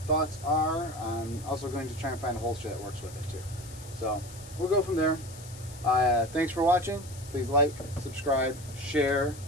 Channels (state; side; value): noise; left; hiss, 17 dB below the sound